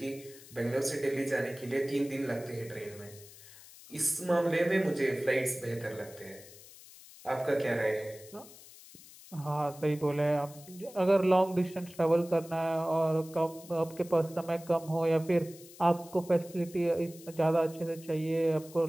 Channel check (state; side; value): noise; left; hiss, 20 dB below the sound